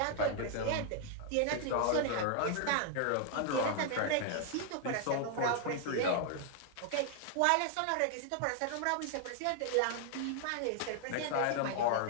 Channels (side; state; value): both; different; correlation 0.00